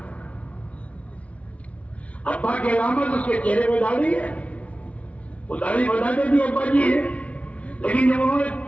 ابا کی علامت اس کے چہرے پہ داڑھی ہے، وہ داڑھی بتاتے بھی ابا جی ہے، لیکن جب انہوں نے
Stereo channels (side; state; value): right; late; 0.065 ms